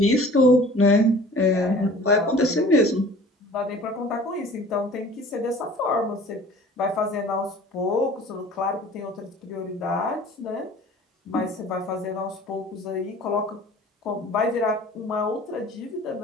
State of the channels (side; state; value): both; normal; correlation 0.46